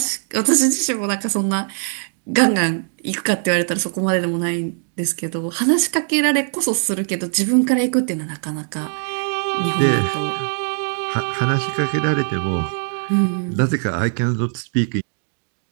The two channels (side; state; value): left; silent; digital silence